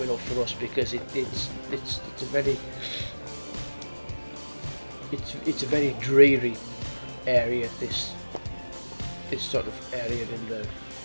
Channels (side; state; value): both; inverted; correlation -1.00